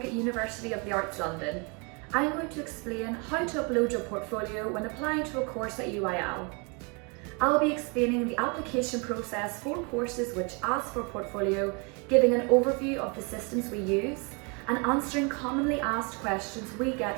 at University of the Arts London. I'm going to explain how to upload your portfolio when applying to a course at UAL. I'll be explaining the application process for courses which ask for a portfolio, giving an overview of the systems we use, and answering commonly asked questions we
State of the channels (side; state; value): left; quieter; 32.7 dB